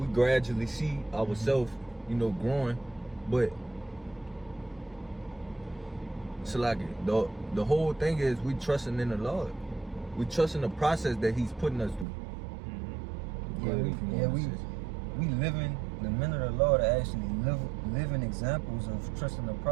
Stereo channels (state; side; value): drops out; left; at 12.1 s